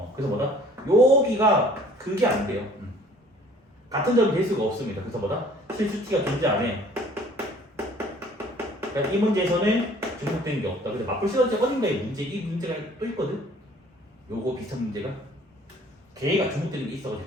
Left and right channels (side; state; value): both; normal; correlation 0.54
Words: 그래서 뭐다? 여기가 그게 안 돼요. 같은 점이 될 수가 없습니다. 그래서 뭐다? 실수 t가 존재 안 해. 그러니까 이 문제에서는 중복되는 게 없다. 근데 맞불 시험제 어딘가에 이 문제가 또 있거든? 요거 비슷한 문제가. 걔가 중복되는 게 있어가지고